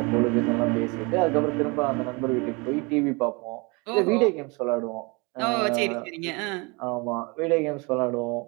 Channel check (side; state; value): left; quieter; 28.5 dB